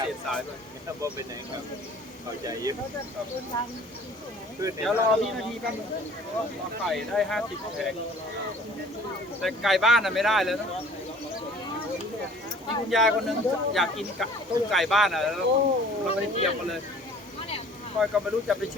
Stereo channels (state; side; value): normal; both; correlation 0.50